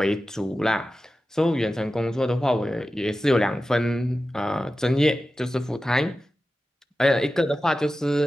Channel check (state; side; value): normal; both; correlation 0.94